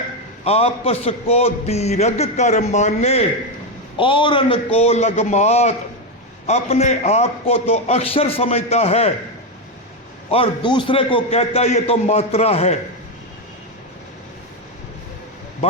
आपस को दीर्घ कर माने औरन को लगमात। अपने आप को तो अक्षर समझता है और दूसरे को कहता है ये तो मात्रा है।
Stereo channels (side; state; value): both; normal; correlation 0.08